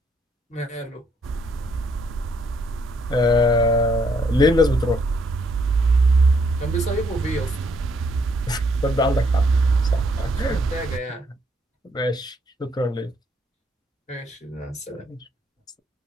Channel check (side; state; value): both; normal; correlation 0.71